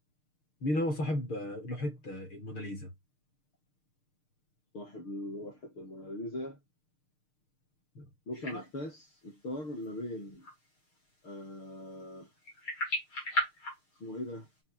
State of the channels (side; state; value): right; late; 6.6 ms